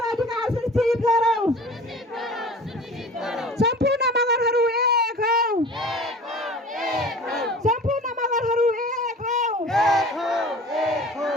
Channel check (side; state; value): both; normal; correlation 0.41